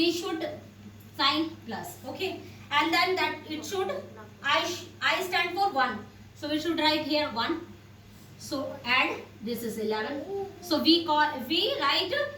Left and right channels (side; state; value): both; identical; correlation 1.00